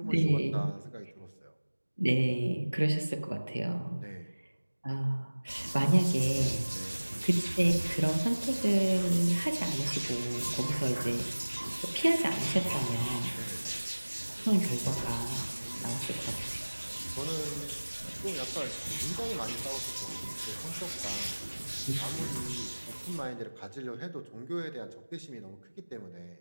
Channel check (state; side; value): inverted; both; correlation -1.00